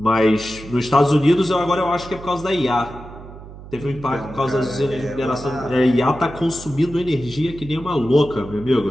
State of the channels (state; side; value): noise; right; hum, 16 dB below the sound